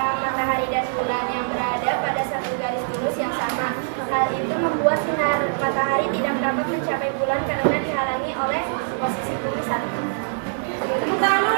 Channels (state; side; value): silent; left; digital silence